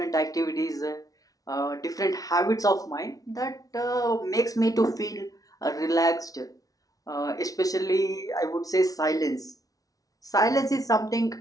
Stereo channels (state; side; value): late; right; 0.18 ms